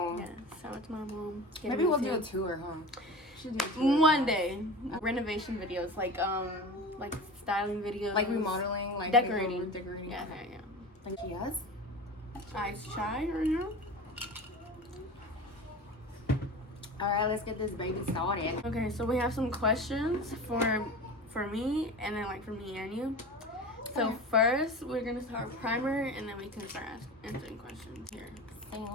Yeah, so it's my mom. Maybe we'll do a tour home. Should do a tour. One day. Renovation videos, like styling videos. Like remodeling, like decorating. Decorating. Yeah. Like yes. Ice chai right now. Alright, let's get this baby started. Okay, so we have some questions for me, and then like for me and you. So Okay. first, we're gonna start with primer, and then we can start answering questions here.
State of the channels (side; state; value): both; normal; correlation 0.32